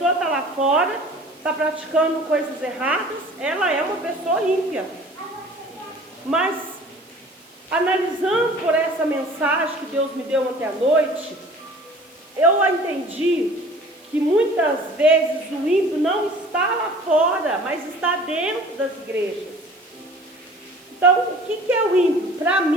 está lá fora, está praticando coisas erradas, ela é uma pessoa ímpia. Mas, analisando por essa mensagem que Deus me deu ontem à noite, eu entendi que muitas vezes o ímpio não está lá fora, mas está dentro das igrejas. Então, o que é o ímpio? Para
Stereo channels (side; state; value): right; noise; hiss, 29 dB below the sound